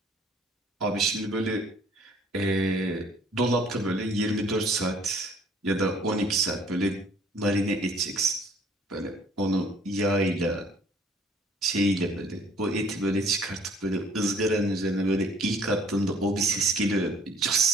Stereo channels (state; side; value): normal; both; correlation 0.57